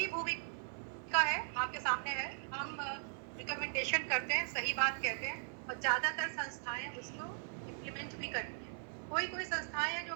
भूमिका है, आपके सामने है। हम रिकमेंडेशन करते हैं, सही बात कहते हैं, और ज्यादातर संस्थाएं उसको इम्प्लीमेंट भी करती हैं। कोई संस्थाएं हैं जो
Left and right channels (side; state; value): left; silent; 52 dB below the other